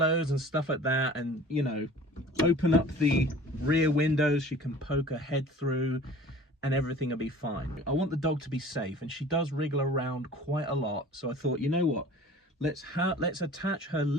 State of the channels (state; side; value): normal; both; correlation 0.45